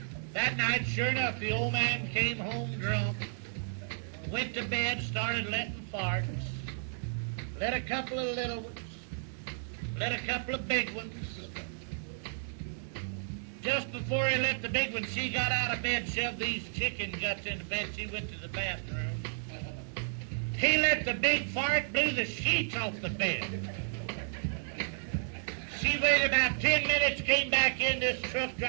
That night, sure enough, the old man came home drunk, went to bed, started letting farts. Let a couple of little ones. Let a couple of big ones. Just before he let the big one, she got out of bed, shoved these chicken guts into bed. She went to the bathroom. He let the big fart, blew the sheets off the bed. She waited about 10 minutes, came back in. This truck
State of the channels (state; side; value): silent; left; digital silence